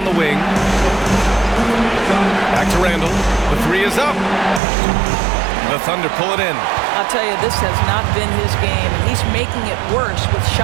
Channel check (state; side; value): drops out; left; at 4.6 s